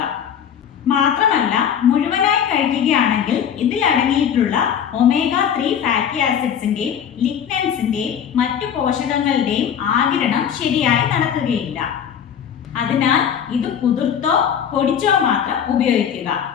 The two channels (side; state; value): right; quieter; 8.4 dB